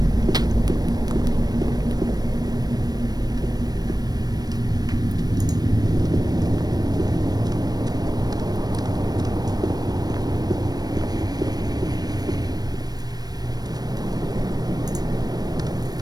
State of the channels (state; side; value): late; left; 0.19 ms